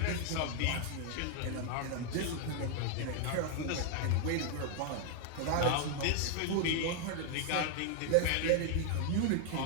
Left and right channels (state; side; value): different; both; correlation 0.00